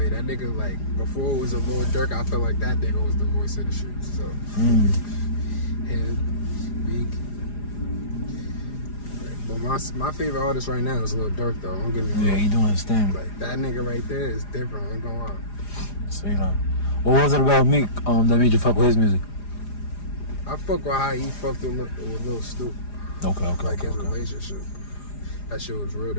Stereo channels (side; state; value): right; late; 4.9 ms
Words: That nigga, like, before it was a Lil Durk, I felt like that nigga was the voice of the streets. So, and Speak. But my favorite artist right now is Lil Durk though. Don't get me wrong. Yeah, he doing his thing. Like that nigga right there is different. I ain't gonna lie. So you know, what was it about Meek that made you fuck with his music? I fuck with how he fucked with Lil Snoop. Okay. Like his relationship. That shit was real